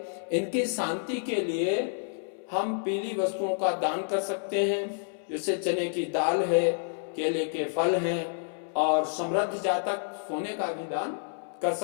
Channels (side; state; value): right; silent; 59 dB below the other